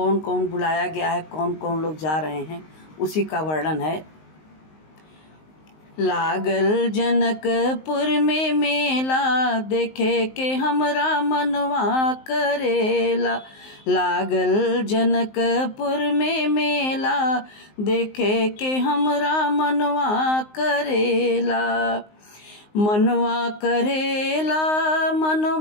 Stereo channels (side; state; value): right; late; 19 ms